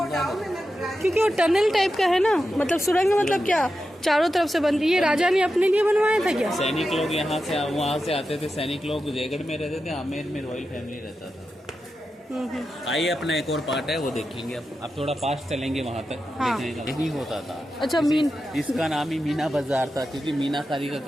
क्योंकि वो टनल टाइप का है ना, मतलब सुरंग मतलब क्या चारों तरफ से बंद। ये राजा ने अपने लिए बनवाया था क्या? सैनिक लोग यहाँ से वहाँ से आते थे। सैनिक लोग जयगढ़ में रहते थे, आमेर में रॉयल फैमिली रहता था। आइए, अपना एक और पार्ट है वो देखेंगे। आप थोड़ा पास चलेंगे वहाँ तक। हाँ। देखेंगे यही होता था। अच्छा, इसका नाम ही मीना बाजार था, क्योंकि मीनाकारी का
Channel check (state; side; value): normal; both; correlation 0.90